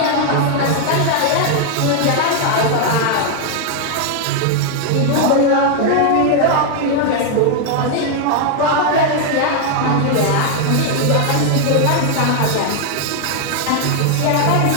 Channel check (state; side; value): different; both; correlation 0.00